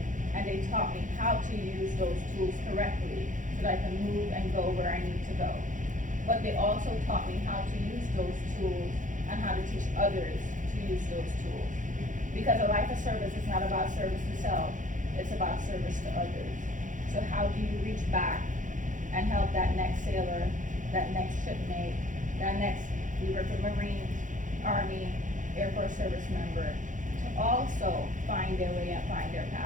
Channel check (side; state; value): left; late; 0.37 ms